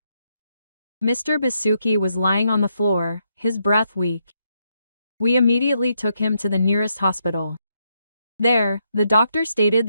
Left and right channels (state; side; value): inverted; both; correlation -0.78